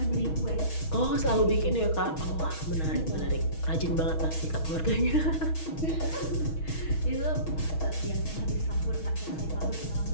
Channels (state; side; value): late; right; 6.3 ms